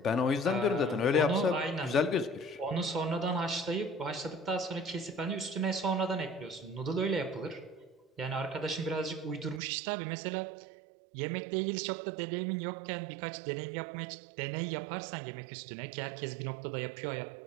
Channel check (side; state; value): left; drops out; at 9.6 s